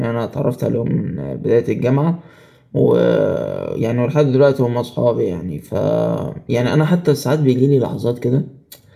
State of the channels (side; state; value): both; identical; correlation 1.00